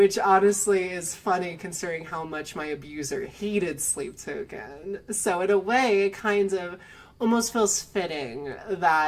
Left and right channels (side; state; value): both; identical; correlation 1.00